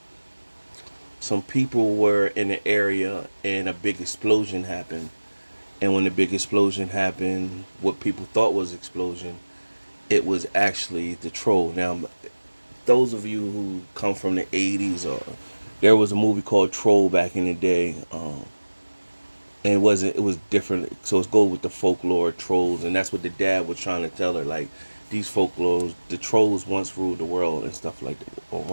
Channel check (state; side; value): inverted; both; correlation -1.00